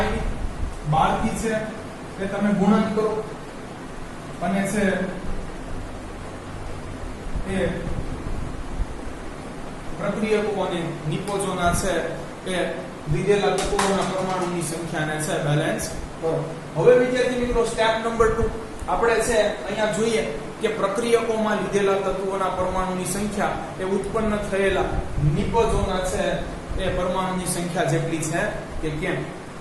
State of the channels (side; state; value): both; identical; correlation 1.00